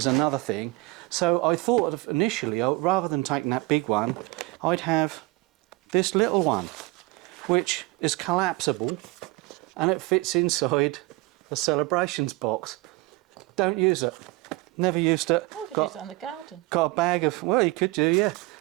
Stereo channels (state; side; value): quieter; left; 22.8 dB